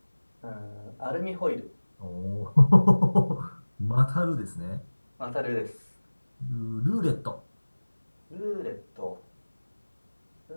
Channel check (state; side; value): inverted; both; correlation -1.00